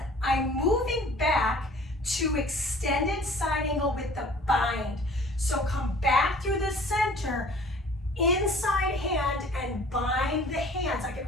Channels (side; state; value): both; normal; correlation 0.49